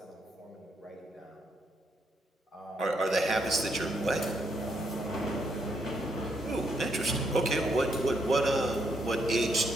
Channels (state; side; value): normal; both; correlation 0.76